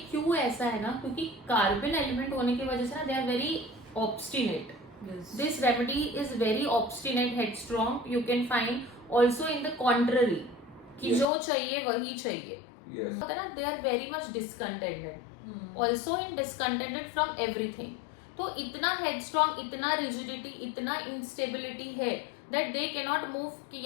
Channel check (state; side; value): drops out; right; at 11.2 s